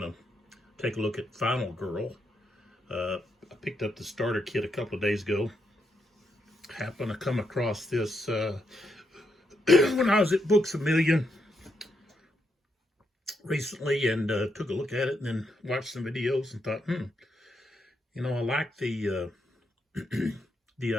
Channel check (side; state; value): both; normal; correlation 0.81